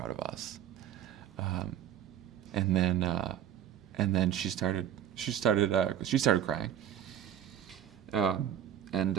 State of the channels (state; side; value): quieter; left; 10.3 dB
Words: of us." And then she started crying.